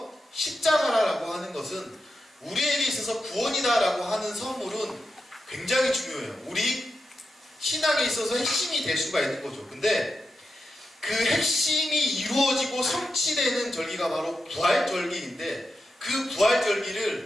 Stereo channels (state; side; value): normal; both; correlation 0.88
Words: 십자가라고 하는 것은 우리에게 있어서 구원이다라고 하는 선물은 굉장히 중요해요. 우리 신앙에 있어서 핵심이 될 수가 있는 거죠. 근데 그 핵심이 이루어지고 성취되는 절기가 바로 부활절기인데, 그